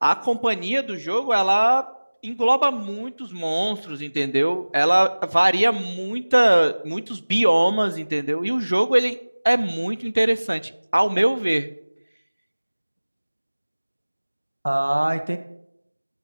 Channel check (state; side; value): inverted; both; correlation -1.00